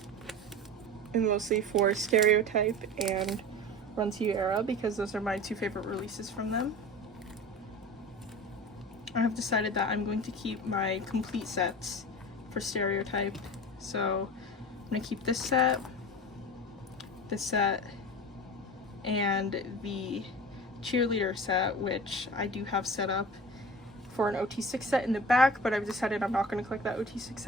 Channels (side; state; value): both; normal; correlation 0.34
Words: and mostly for Stereotype and Run To You Era, because those are my 2 favorite releases from them. I have decided that I'm going to keep my complete sets for Stereotype. So I'm going to keep this set, and the cheerleader set, which I do have set up for an OT6 set in the back, but I've decided I'm not going to collect that OT6